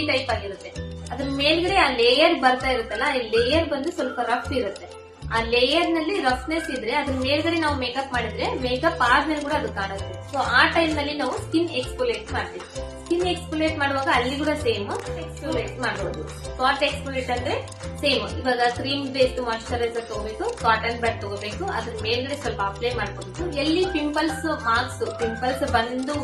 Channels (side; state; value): both; identical; correlation 1.00